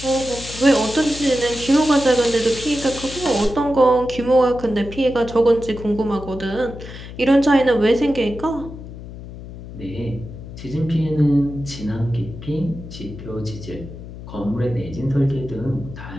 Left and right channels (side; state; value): left; noise; hum, 13 dB below the sound